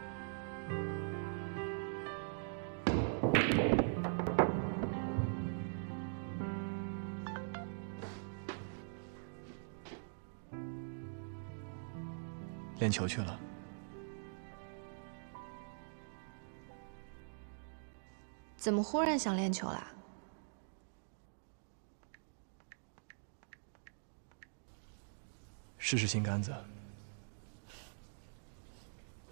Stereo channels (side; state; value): left; silent; digital silence